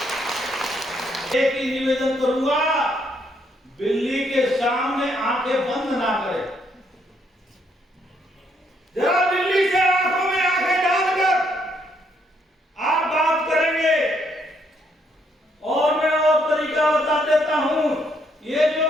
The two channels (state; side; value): normal; both; correlation 0.72